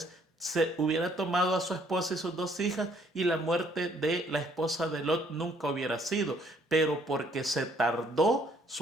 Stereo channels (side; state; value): both; normal; correlation 0.64